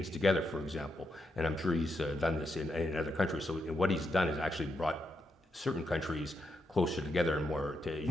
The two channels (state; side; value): normal; both; correlation 0.82